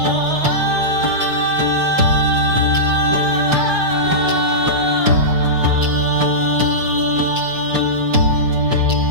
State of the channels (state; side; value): late; left; 6.2 ms